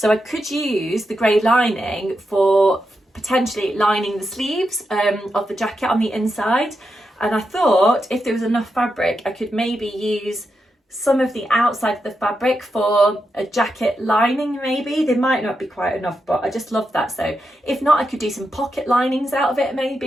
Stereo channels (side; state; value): both; normal; correlation 0.86